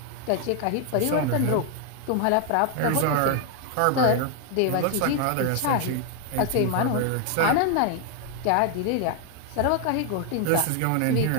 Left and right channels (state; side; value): different; both; correlation 0.00